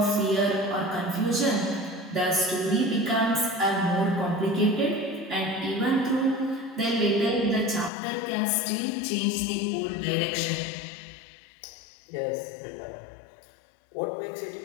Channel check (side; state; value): right; drops out; at 7.9 s